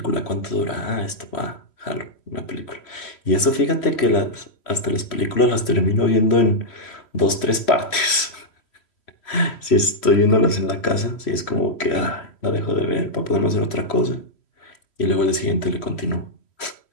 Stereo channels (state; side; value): late; right; 3.1 ms